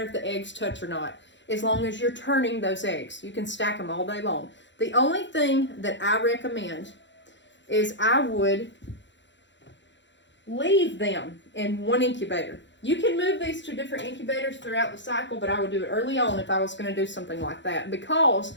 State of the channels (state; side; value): late; right; 0.53 ms